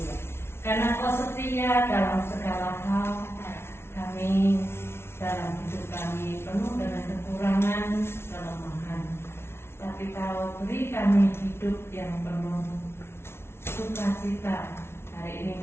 Karena Kau setia dalam segala hal, kami dalam hidup kami penuh dengan kekurangan, kelemahan. Tapi Kau beri kami hidup yang penuh sukacita. Hari ini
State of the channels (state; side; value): late; right; 0.12 ms